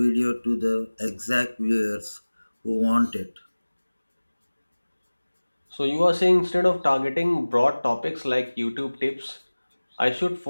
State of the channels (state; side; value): inverted; both; correlation -1.00